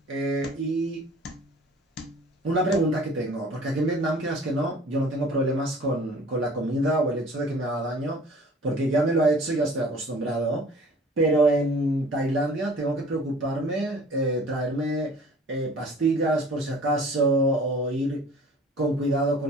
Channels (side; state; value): both; normal; correlation 0.48